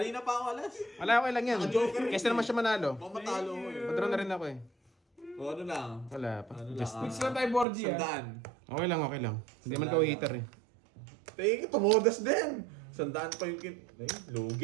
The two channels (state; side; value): drops out; left; at 7.7 s